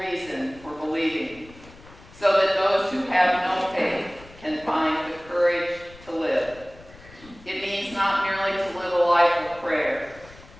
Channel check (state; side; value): noise; left; rumble, 21 dB below the sound